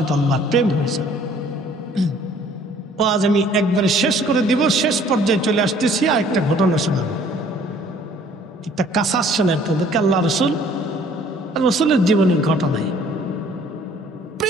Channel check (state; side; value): normal; both; correlation 0.56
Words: আল্লাহর প্রেম হয়ে যাবে। ও আজ আমি একবারে শেষ করে দিব, শেষ পর্যায়ে চলে আসতেছি। আর একটা ঘটনা শোনাবো, একটা কাসাস শোনেন তাদেরকে। আল্লাহ রসুলের জীবনের ঘটনায়